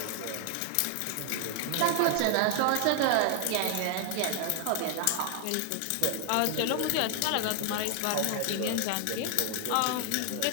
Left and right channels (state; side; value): different; both; correlation 0.00